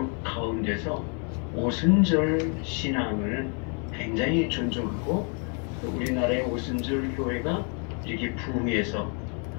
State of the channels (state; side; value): quieter; right; 38.7 dB